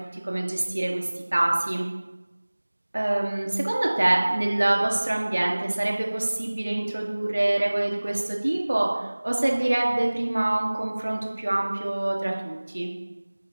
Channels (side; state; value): both; inverted; correlation -1.00